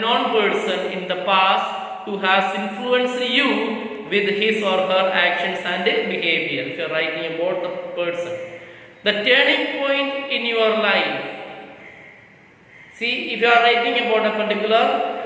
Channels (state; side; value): identical; both; correlation 1.00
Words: person in the past who has influenced you with his or her actions and behavior. If you are writing about the person, the turning point in your life. See, if you are writing about a particular